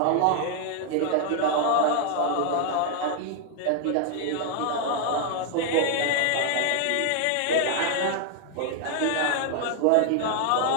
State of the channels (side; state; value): both; different; correlation 0.00